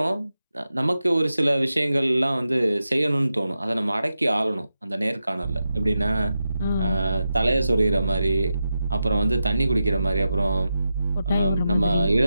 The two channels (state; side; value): inverted; both; correlation -0.89